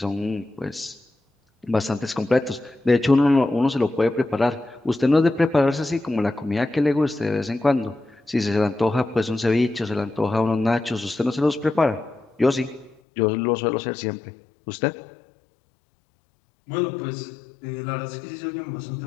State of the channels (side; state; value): right; drops out; at 13.0 s